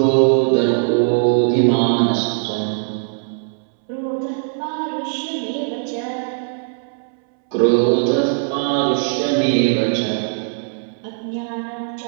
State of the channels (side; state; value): left; silent; 66 dB below the other